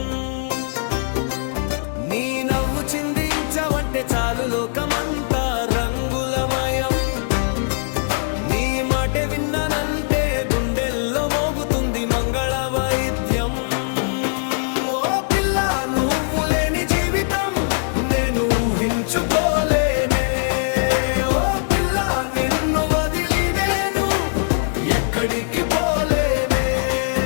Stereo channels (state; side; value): silent; right; digital silence